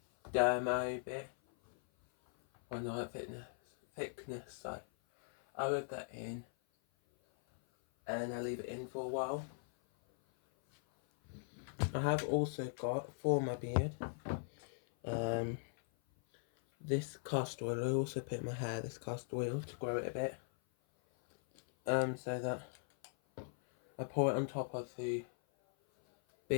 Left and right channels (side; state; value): right; silent; 51 dB below the other